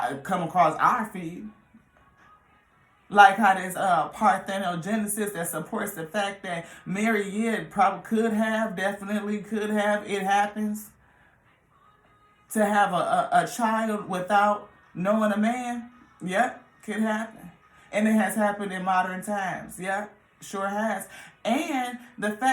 come across our feed. Like how there's parthenogenesis that supports the fact that Mary, probably definitely could have, it happens. To have a child without knowing a man, yep, could happen. And it has happened in modern times, yep, sure has. And the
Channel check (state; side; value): identical; both; correlation 1.00